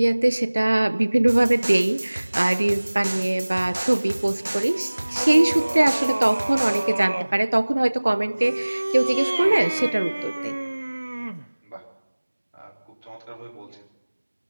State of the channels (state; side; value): inverted; both; correlation -1.00